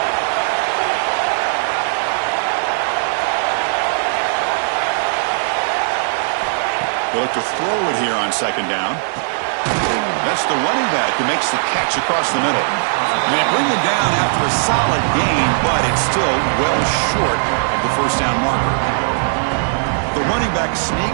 They look to throw it here on 2nd down. That's the running back who makes the catch across the middle. And they bring him down after a solid gain, but it's still well short of the first down marker. The running back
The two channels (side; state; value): left; silent; digital silence